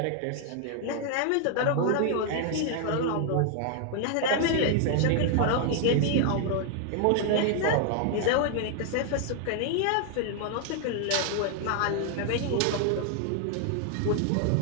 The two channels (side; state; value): both; different; correlation 0.00